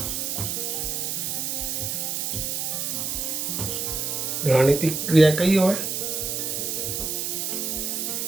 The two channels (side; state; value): right; noise; hiss, 1 dB below the sound